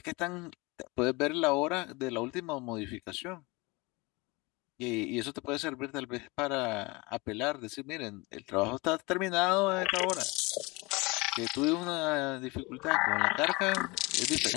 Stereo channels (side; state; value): right; quieter; 25.2 dB